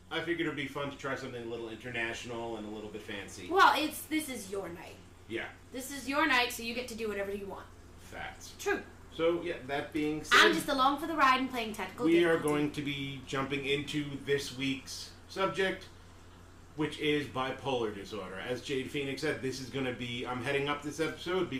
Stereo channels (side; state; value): both; identical; correlation 1.00